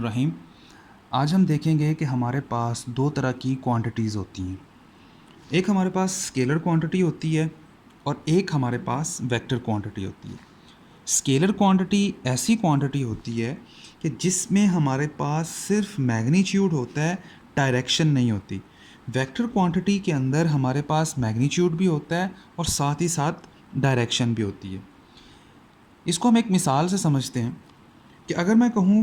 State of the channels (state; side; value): identical; both; correlation 1.00